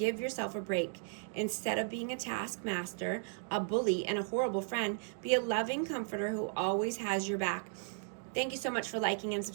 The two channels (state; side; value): silent; left; digital silence